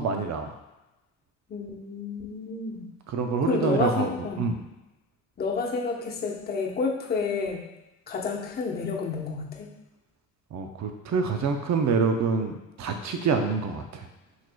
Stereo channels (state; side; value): normal; both; correlation 0.25